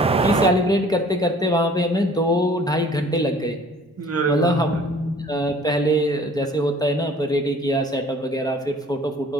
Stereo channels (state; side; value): normal; both; correlation 0.52